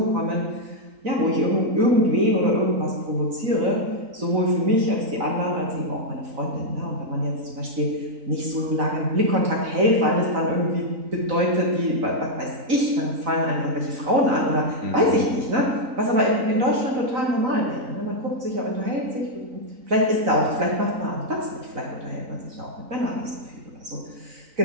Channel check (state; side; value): late; left; 3.9 ms